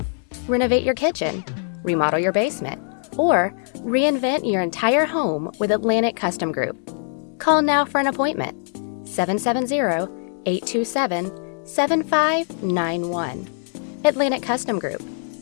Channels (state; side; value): silent; right; 63 dB below the other